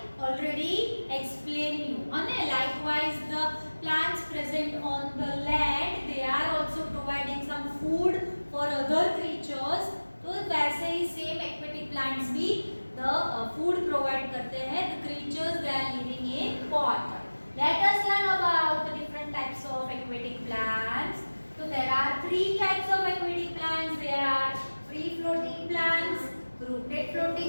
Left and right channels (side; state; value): both; inverted; correlation -1.00